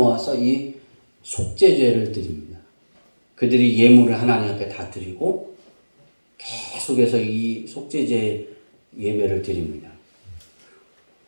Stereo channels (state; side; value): inverted; both; correlation -1.00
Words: 이 속죄제를 드립니다. 그들이 예물을 하나님 앞에 다 드리고 계속해서 이 속죄제 예배를 드립니다.